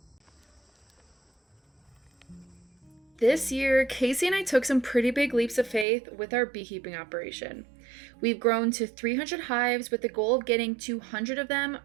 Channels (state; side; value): drops out; left; at 5.9 s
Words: This year, Casey and I took some pretty big leaps of faith with our beekeeping operation. We've grown to 300 hives with the goal of getting 200 of them